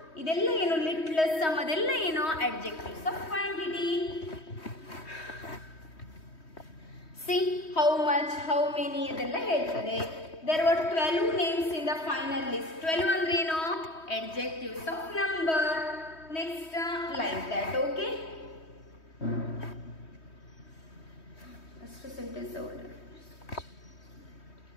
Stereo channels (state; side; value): late; right; 3.2 ms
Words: idella eno little, some adella eno adjectives of quantity. See how much, how many adella heltade. There were 12 names in the final list. 12 andre eno adjectives of number. Next, like that. Okay, first sentence order.